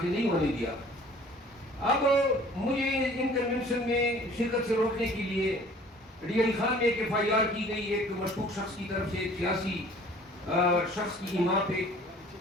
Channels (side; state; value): both; normal; correlation 0.51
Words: نہیں ہونے دیا. اب مجھے ان کنونشن میں شرکت سے روکنے کے لیے ڈی علی خان میں ایک FIR کی گئی ایک مشکوک شخص کی طرف سے ایک سیاسی شخص کی ایما پہ.